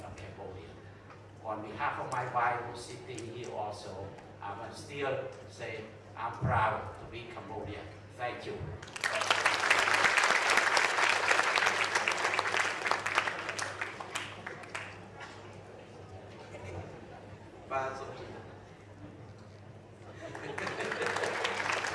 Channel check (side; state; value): both; identical; correlation 1.00